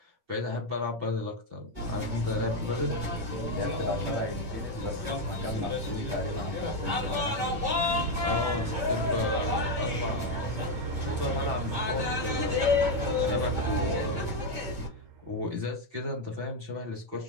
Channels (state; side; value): late; left; 8.7 ms